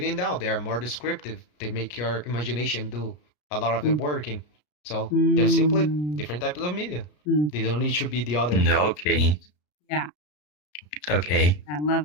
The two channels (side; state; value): right; late; 34 ms